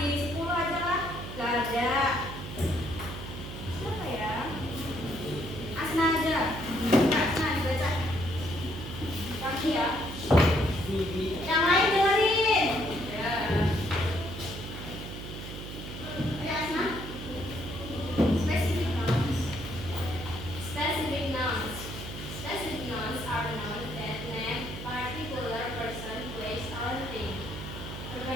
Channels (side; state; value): right; noise; hum, 9 dB below the sound